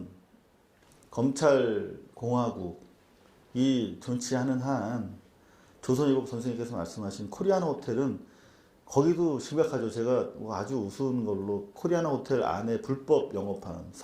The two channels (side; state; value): both; identical; correlation 1.00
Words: 검찰 공화국이 존치하는 한 조선일보 선생님께서 말씀하신 코리아나 호텔은 거기도 심각하죠. 제가 아주 우스운 걸로 코리아나 호텔 안에 불법 영업하는